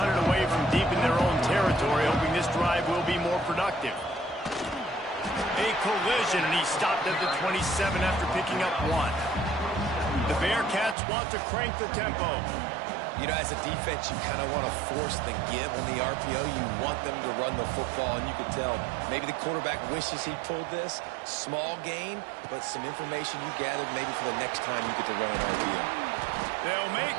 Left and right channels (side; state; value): left; drops out; at 11.0 s